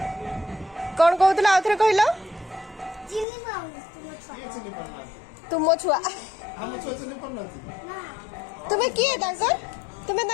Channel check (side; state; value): right; drops out; at 3.2 s